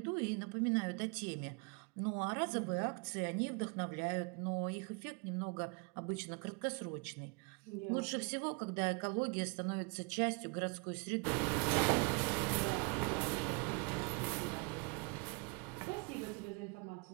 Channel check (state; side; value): quieter; left; 32.4 dB